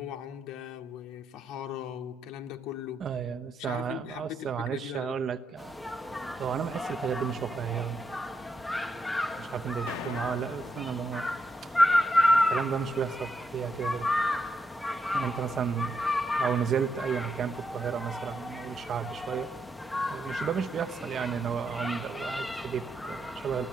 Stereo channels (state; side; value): normal; both; correlation 0.81